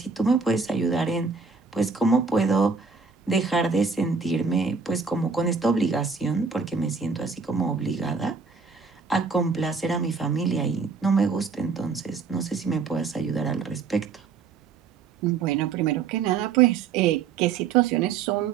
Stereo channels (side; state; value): left; quieter; 5.2 dB